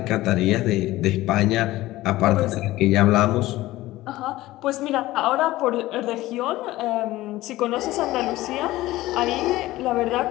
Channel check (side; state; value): right; quieter; 17.1 dB